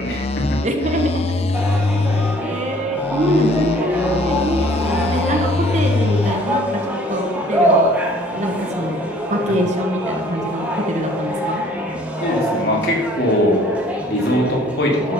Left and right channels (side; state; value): both; normal; correlation 0.56